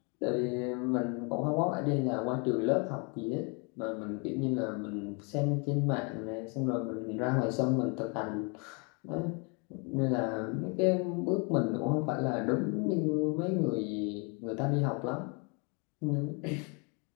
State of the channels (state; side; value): quieter; right; 33.7 dB